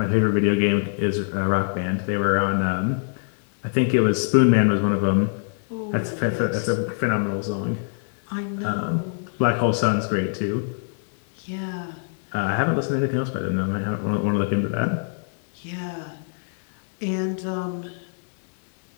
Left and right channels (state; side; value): silent; right; digital silence